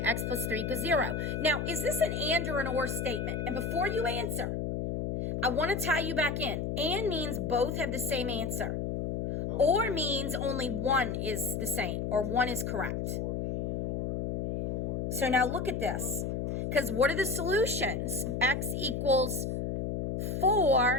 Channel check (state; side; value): noise; left; hum, 1 dB below the sound